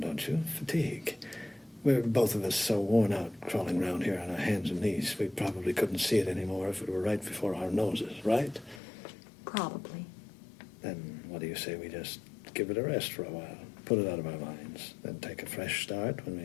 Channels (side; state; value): right; drops out; at 8.8 s